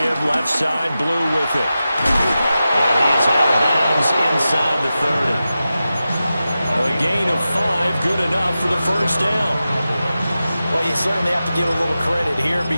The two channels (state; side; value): inverted; both; correlation -0.93